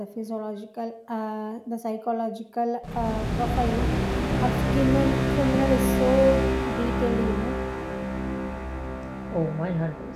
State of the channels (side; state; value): both; identical; correlation 1.00